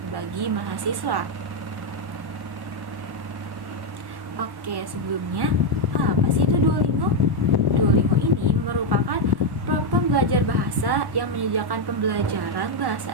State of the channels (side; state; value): left; late; 1.1 ms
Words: bagi mahasiswa. Oke, sebelumnya apa sih itu Duolingo? Duolingo ini merupakan platform belajar bahasa yang menyediakan pembelajaran